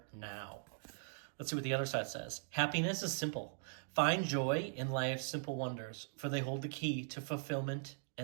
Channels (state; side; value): silent; left; digital silence